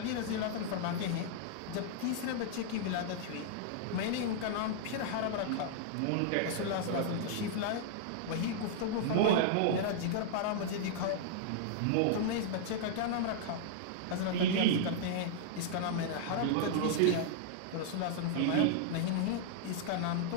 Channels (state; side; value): different; both; correlation -0.01